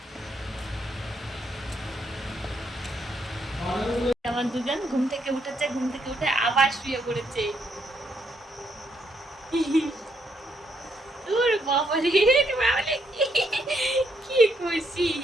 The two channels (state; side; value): normal; both; correlation 0.75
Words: আমার দুজন ঘুম থেকে উঠেছে, ঘুম থেকে উঠে আবার শুয়ে পড়েছে। তোর বাবারে, কি খুশি,